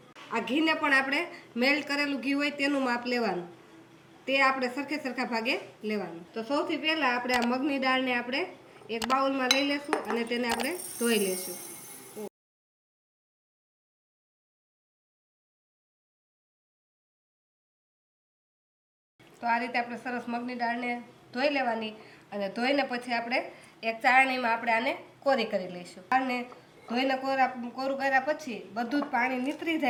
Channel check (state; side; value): identical; both; correlation 1.00